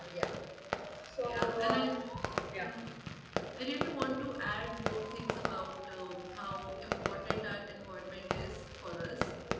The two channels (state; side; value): identical; both; correlation 1.00